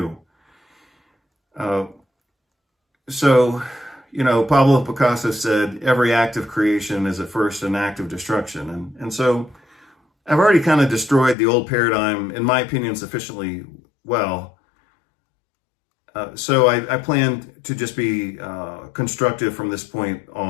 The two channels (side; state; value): right; drops out; at 11.4 s